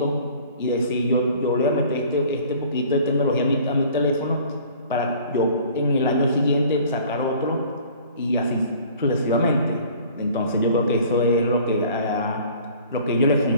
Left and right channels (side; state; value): both; inverted; correlation -0.50